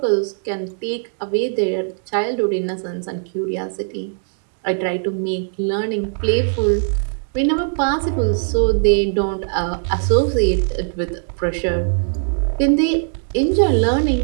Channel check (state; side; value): silent; left; digital silence